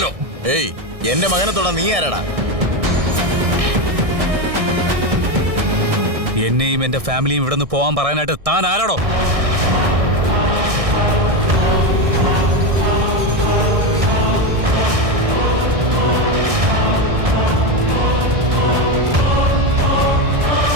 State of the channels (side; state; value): left; late; 1.6 ms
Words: ഏയ്, എന്റെ മകനെ തൊടാ നീ ആരാടാ? എന്നെയും എന്റെ ഫാമിലിയും ഇവിടെ നിന്ന് പോകാൻ പറയാനായിട്ട് താൻ ആരാടോ?